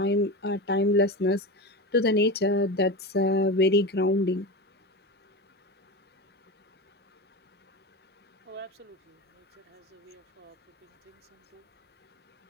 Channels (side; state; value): both; normal; correlation 0.23